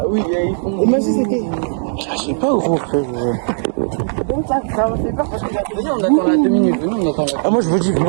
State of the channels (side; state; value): left; silent; digital silence